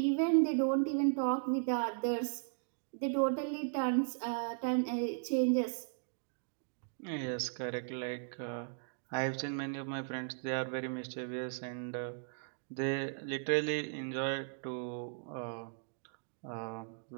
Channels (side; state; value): left; silent; digital silence